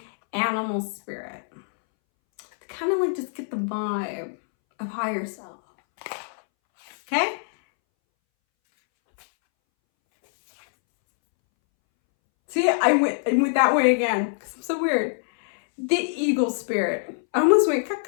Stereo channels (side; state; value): right; silent; 62 dB below the other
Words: animal spirit. To kind of just get the vibe of higher self. Okay? See, I went that way again because I'm so weird. The eagle spirit. I almost went